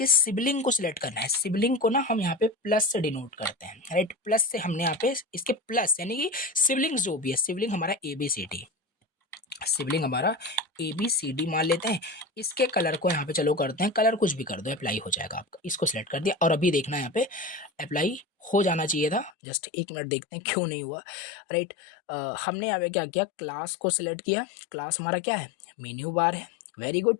सिबलिंग को सिलेक्ट करना है, सिबलिंग को ना हम यहाँ पे प्लस से डिनोट करते हैं, राइट। प्लस से हमने यहाँ पे इसके प्लस यानी कि सिबलिंग जो भी है, सिबलिंग हमारा एबीसीडी, सिबलिंग हमारा एबीसीडी मान लेते हैं। इसके कलर को यहाँ पे चलो करते हैं, कलर कुछ भी कर दो अप्लाई हो जाएगा आपका, इसको सिलेक्ट कर दिया, और अभी देखना यहाँ पे अप्लाई हो जाना चाहिए था, जस्ट एक मिनट देखते हैं क्यों नहीं हुआ, राइट। हमने यहाँ पे क्या किया, क्लास को सिलेक्ट किया, क्लास हमारा क्या है, मेन्यू बार है, वेरी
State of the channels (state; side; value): drops out; right; at 19.3 s